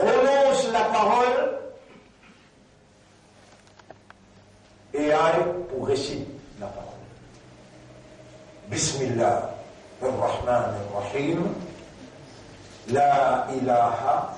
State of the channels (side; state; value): both; identical; correlation 1.00